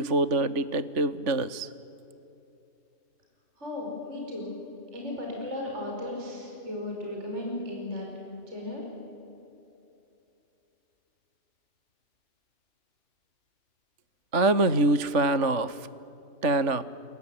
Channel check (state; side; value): late; left; 3.4 ms